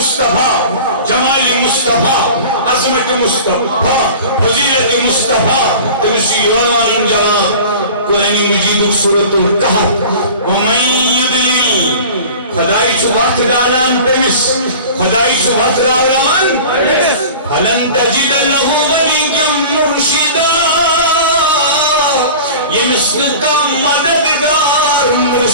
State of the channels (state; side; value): inverted; both; correlation -0.39